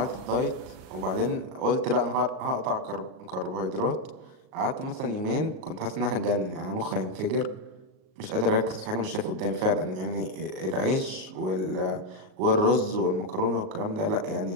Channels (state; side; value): late; left; 38 ms